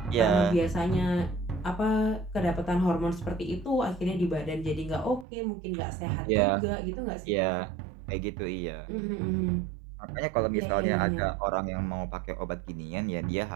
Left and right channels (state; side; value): drops out; left; at 5.2 s